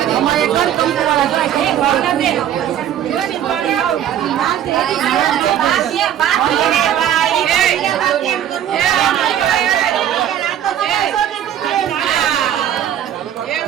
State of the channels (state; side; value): quieter; left; 10.5 dB